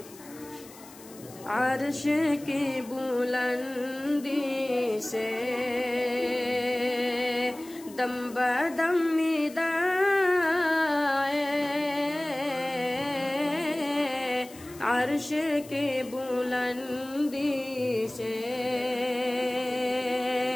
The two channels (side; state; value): left; noise; hiss, 20 dB below the sound